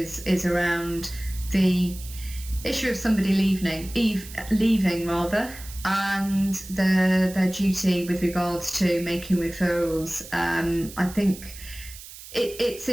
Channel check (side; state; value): right; noise; hiss, 15 dB below the sound